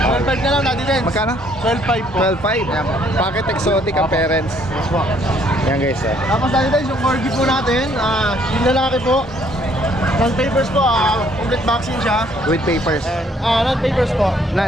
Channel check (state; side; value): normal; both; correlation 0.64